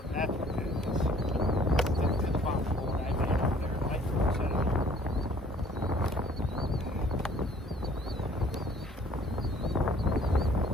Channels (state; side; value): normal; both; correlation 0.57